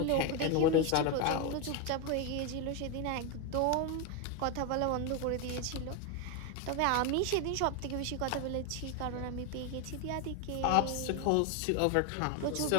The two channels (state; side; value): different; both; correlation 0.02